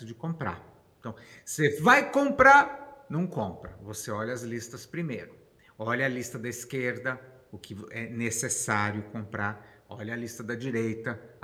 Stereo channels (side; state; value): both; identical; correlation 1.00